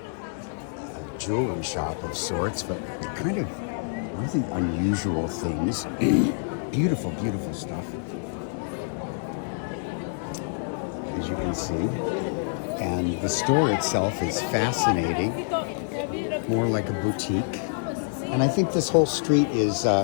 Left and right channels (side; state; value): right; silent; digital silence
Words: jewelry shop of sorts, but kind of really unusual things. Beautiful, beautiful stuff, as you can see. And the store itself is fascinating, more like a boutique. And I think this whole street is